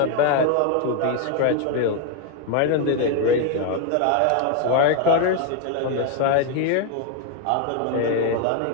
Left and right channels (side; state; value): both; different; correlation 0.01